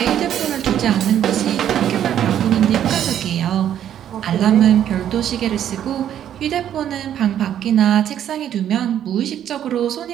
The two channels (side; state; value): left; quieter; 10.3 dB